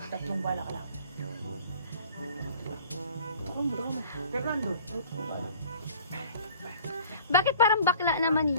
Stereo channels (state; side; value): inverted; both; correlation -0.49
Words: Tatlong bala ka lang. Fernando. Bakit parang bakla naman